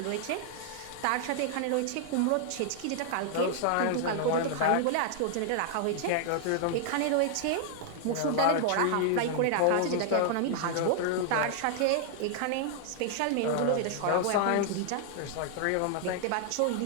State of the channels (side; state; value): both; different; correlation -0.01